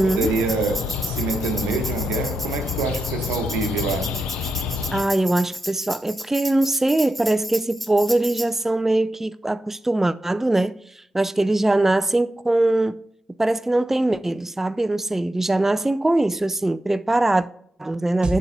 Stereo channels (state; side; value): normal; both; correlation 0.89